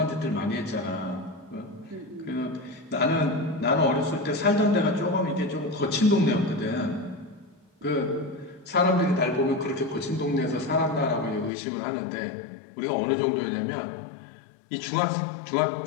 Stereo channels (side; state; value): right; drops out; at 11.5 s